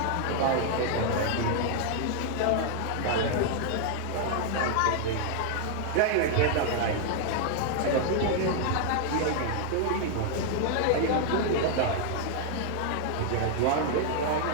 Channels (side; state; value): both; different; correlation 0.00